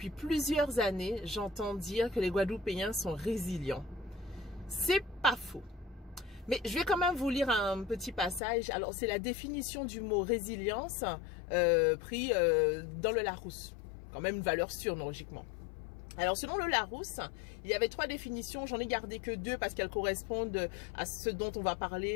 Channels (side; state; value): right; drops out; at 8.4 s